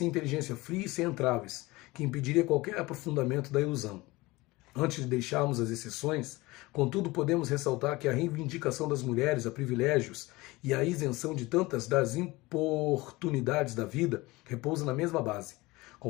inteligência fria e sem entraves, que impediria qualquer aprofundamento da ilusão. Antes de deixarmos as exceções, contudo, podemos ressaltar que a reivindicação das mulheres a privilégios e a isenção de tantas das importunidades da vida repousa na mesma base.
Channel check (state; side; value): quieter; right; 21.3 dB